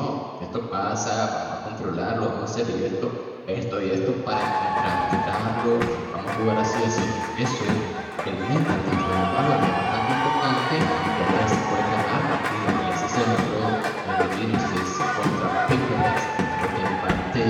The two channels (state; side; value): identical; both; correlation 1.00